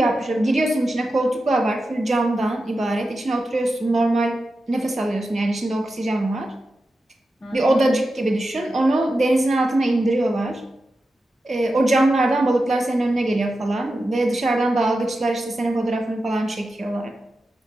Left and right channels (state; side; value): normal; both; correlation 0.91